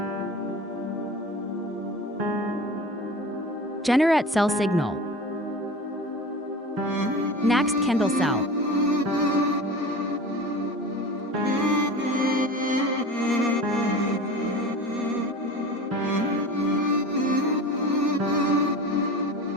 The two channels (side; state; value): both; normal; correlation 0.34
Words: Generate Sell Signal. Next Candle Sell.